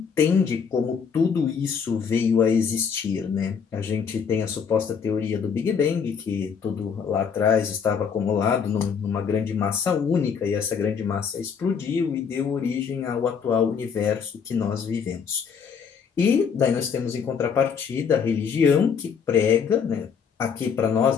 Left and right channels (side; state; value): right; quieter; 6.6 dB